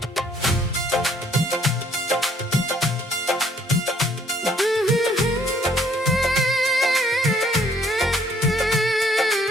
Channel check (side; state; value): both; normal; correlation 0.64